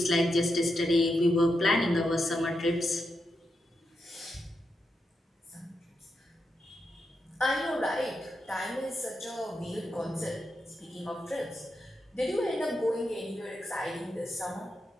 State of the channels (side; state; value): both; normal; correlation 0.85